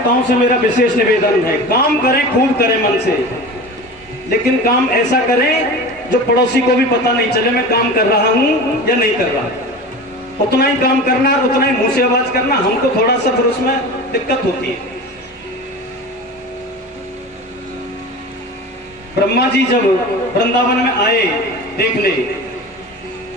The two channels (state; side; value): normal; both; correlation 0.32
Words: से मेरा विशेष निवेदन है, काम करें, खूब करें मन से, लेकिन काम ऐसा करें जो पड़ोसी को भी पता नहीं चले मैं काम कर रहा हूं या नहीं कर रहा। उतना ही काम करना और उतना ही मुंह से आवाज करना, हमको थोड़ा सा फिर उसमें दिक्कत होती है। ब्रह्मा जी जब वृंदावन में आए देखने,